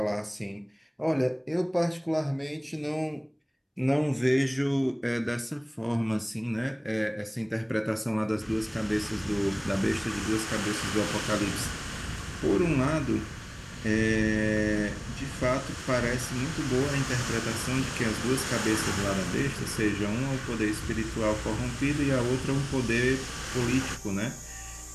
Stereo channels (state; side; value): identical; both; correlation 1.00